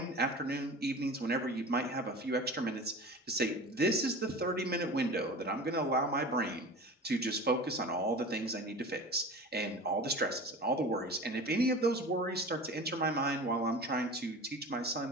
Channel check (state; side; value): normal; both; correlation 0.35